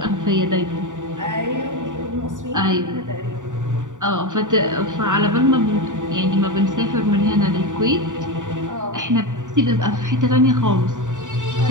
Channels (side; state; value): left; late; 0.86 ms